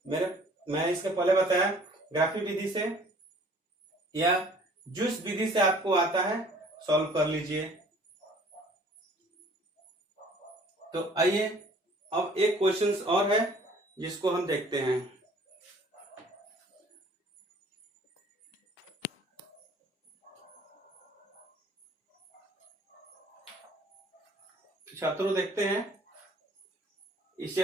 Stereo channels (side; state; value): both; normal; correlation 0.54